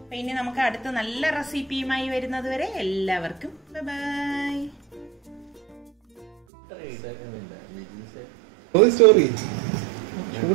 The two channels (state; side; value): drops out; left; at 6.3 s